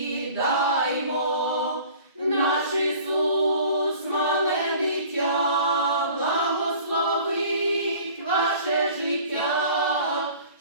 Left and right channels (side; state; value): both; inverted; correlation -0.46